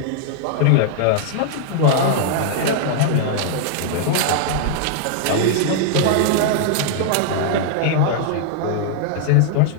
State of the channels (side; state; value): both; different; correlation -0.01